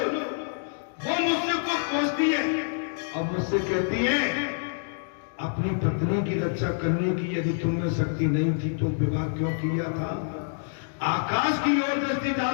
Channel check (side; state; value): right; silent; digital silence